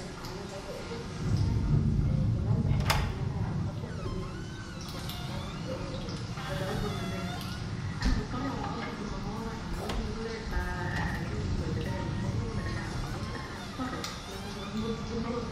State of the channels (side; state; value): both; identical; correlation 1.00